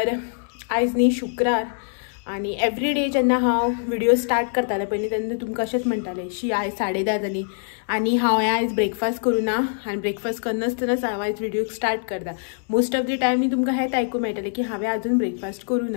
आज न्ही शुक्रार आणि एवरी डे जेन्ना हांव व्हिडिओ स्टार्ट करताले पयलीं तेन्ना तुमकां अशेंच म्हणटाले शी आयज 10:30 जाली आणि हांवें आयज ब्रेकफास्ट करूं ना आनी ब्रेकफास्ट करनासतनाच हांव आयज व्हिडिओ स्टार्ट करता। मोस्ट ऑफ द टायम न्ही तुमकां हेंच आयकूंक मेळटलें की हांवें आजून ब्रेकफास्ट करूं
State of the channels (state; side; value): silent; right; 63 dB below the other